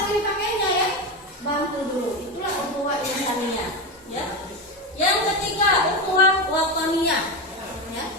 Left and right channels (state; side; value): normal; both; correlation 0.16